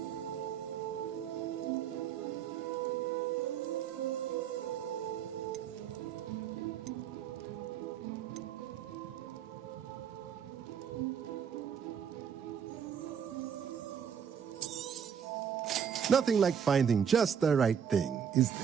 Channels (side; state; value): left; quieter; 7.9 dB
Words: Nothing like finding just the right thing, is